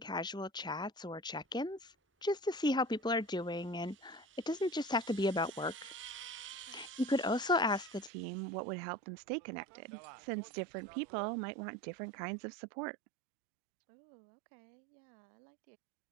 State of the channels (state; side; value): drops out; left; at 8.1 s